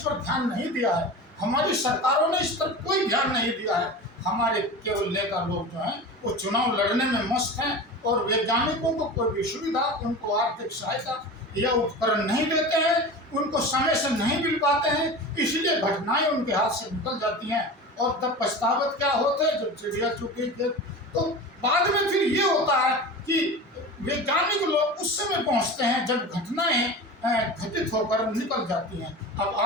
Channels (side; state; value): both; normal; correlation 0.31